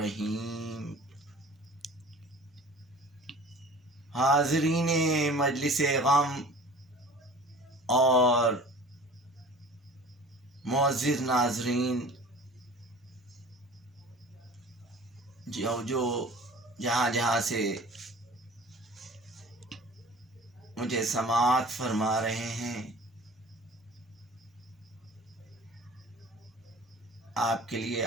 حاضرین مجلس غم اور معزز ناظرین، جو جہاں جہاں سے مجھے سماعت فرما رہے ہیں، آپ کے لیے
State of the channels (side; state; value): both; normal; correlation 0.44